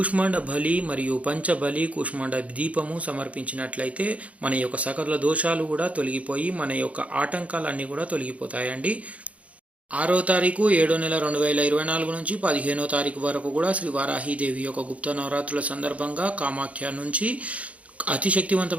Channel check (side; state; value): left; late; 0.066 ms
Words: బలి మరియు పంచబలి కూష్మాండ దీపము సమర్పించినట్లయితే మన యొక్క సకల దోషాలు కూడా తొలగిపోయి మన యొక్క ఆటంకాలన్నీ కూడా తొలగిపోతాయండి. 6వ తారీఖు 7వ నెల 2024 నుంచి 15వ తారీఖు వరకు కూడా శ్రీ వారాహీదేవి యొక్క గుప్త నవరాత్రుల సందర్భంగా కామాఖ్య నుంచి అతి